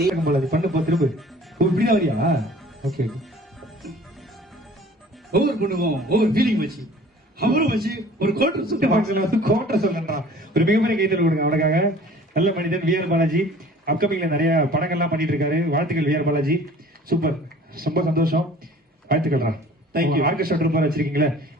பண்ண போ திரும்ப. இப்படிதான் வரியா? ஓகே. ஒவ்வொரு பொண்ணுக்கும் ஒவ்வொரு ஃபீலிங் வச்சு அவரும் வச்சு ஒரு கோட்டர் சொல்லுறா. ஒரு மிகப்பெரிய கைத்தல் கொடுங்க அவனுக்காக. நல்ல மனிதன் வி ஆர் பாலாஜி. அப்கமிங்ல நிறைய படங்கள்லாம் பண்ணிட்டு இருக்காரு. வாழ்த்துக்கள் வி ஆர் பாலாஜி. சூப்பர், ரொம்ப சந்தோஷம். வாழ்த்துக்கள்ரா. தேங்க்யூ. ஆர்கெஸ்ட்ரா ட்ரூப்பர் வச்சிருக்கீங்களே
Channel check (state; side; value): normal; both; correlation 0.48